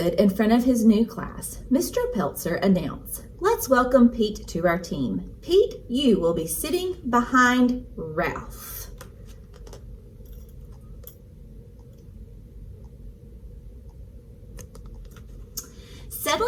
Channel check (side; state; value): both; identical; correlation 1.00